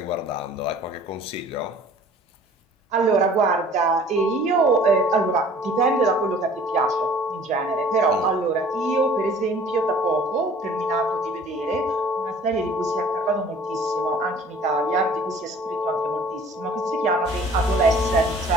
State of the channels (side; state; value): both; normal; correlation 0.50